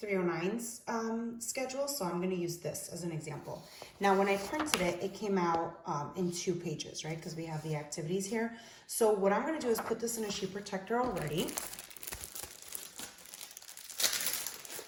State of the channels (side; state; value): both; identical; correlation 1.00